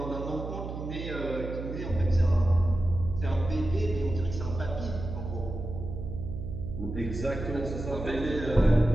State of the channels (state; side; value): noise; right; hum, 7 dB below the sound